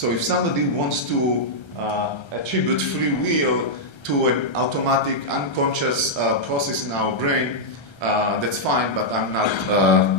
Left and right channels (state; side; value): late; right; 1.3 ms